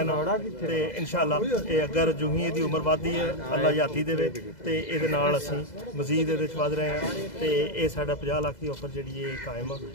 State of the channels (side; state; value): right; late; 2.0 ms